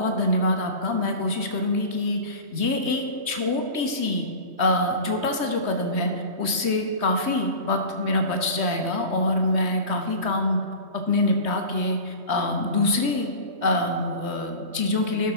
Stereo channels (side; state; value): left; late; 3.2 ms